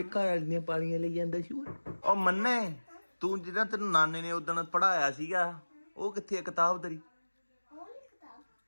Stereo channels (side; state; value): both; inverted; correlation -1.00